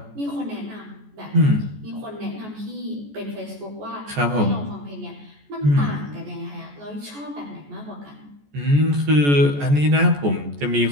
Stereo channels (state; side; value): late; left; 14 ms